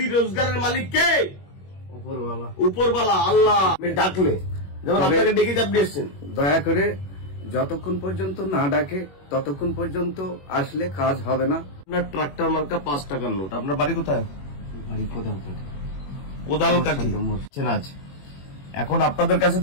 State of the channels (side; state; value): right; late; 21 ms